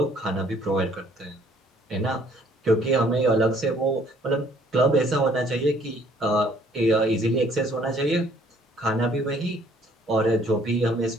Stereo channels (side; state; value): both; normal; correlation 0.61